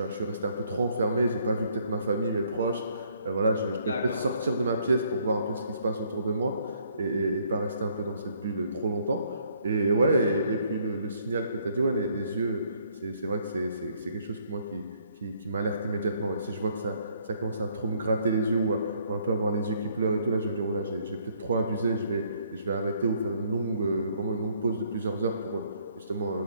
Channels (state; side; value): inverted; both; correlation -0.66